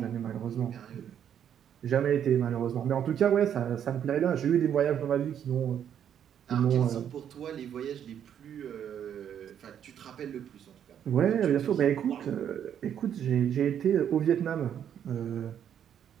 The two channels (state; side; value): quieter; left; 9.2 dB